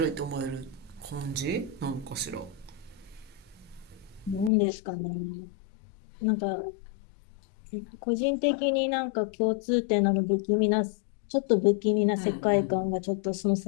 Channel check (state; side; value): drops out; right; at 4.5 s